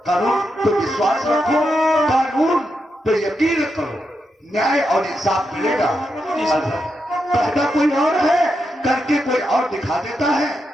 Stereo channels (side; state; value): both; normal; correlation 0.85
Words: कानून पे विश्वास रखो, कानून पे यकीन करो, न्याय और इंसाफ मिलेगा। कहता कोई और है, करके कोई और दिखा देता है।